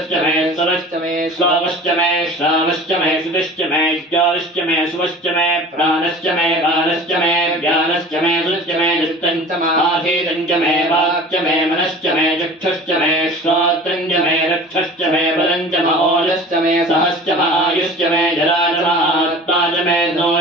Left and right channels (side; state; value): both; normal; correlation 0.41